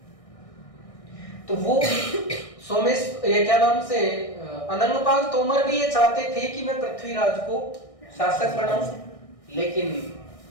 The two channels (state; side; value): late; right; 1.6 ms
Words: तो वो ये क्या नाम से अनंगपाल तोमर भी ये चाहते थे कि मैं पृथ्वीराज को शासक बनाऊं, लेकिन